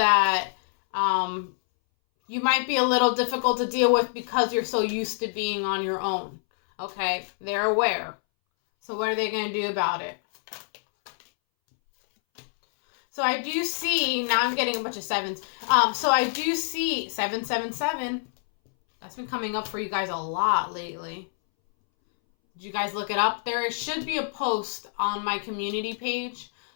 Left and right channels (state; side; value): silent; right; 61 dB below the other